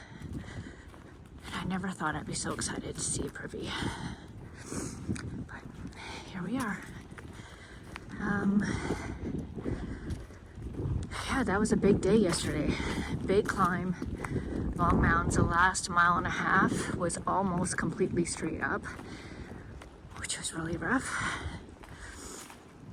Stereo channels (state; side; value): identical; both; correlation 1.00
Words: And I never thought I'd be so excited to see a privy. But here we are. Yeah, that was a big day yesterday. Big climb, long mountains. The last mile and a half was almost completely straight up, which was really rough.